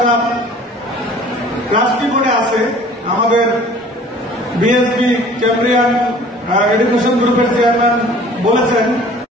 ট্রাস্টি বোর্ডে আছে, আমাদের বিএসবি ক্যামব্রিয়ান এডুকেশন গ্রুপের চেয়ারম্যান বলেছেন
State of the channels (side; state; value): both; normal; correlation 0.49